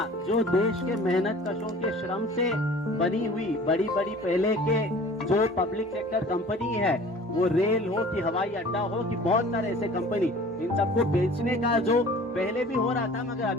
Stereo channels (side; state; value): both; normal; correlation 0.45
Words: जो देश के मेहनत कशों के श्रम से बनी हुई बड़ी बड़ी पहले के जो पब्लिक सेक्टर कंपनी है, वो रेल हो कि हवाई अड्डा हो कि बहुत सारे ऐसे कंपनी, इन सबको बेचने का जो पहले भी हो रहा था, मगर